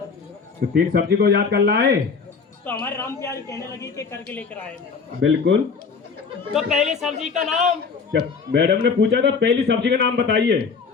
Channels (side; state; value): right; quieter; 5.2 dB